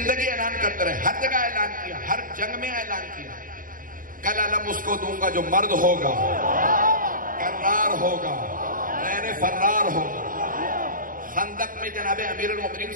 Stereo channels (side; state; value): left; late; 0.40 ms